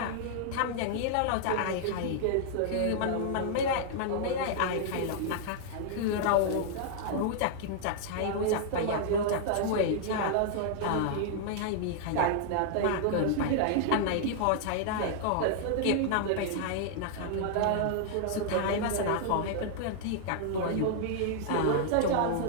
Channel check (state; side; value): different; both; correlation -0.01